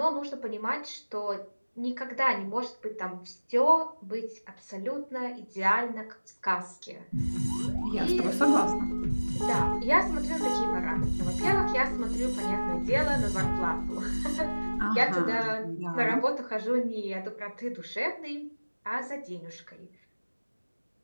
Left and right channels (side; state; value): both; inverted; correlation -1.00